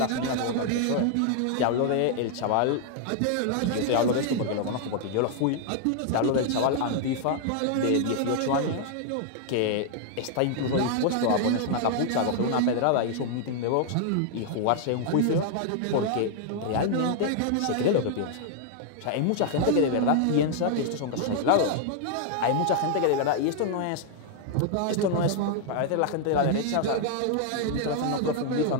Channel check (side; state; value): both; different; correlation 0.00